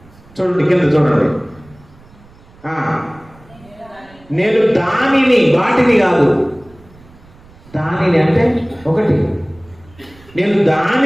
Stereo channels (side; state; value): right; noise; rumble, 26 dB below the sound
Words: చూడండి కింద చూడండి. నేను దానిని, వాటిని కాదు, దానిని అంటే ఒకటి, నేను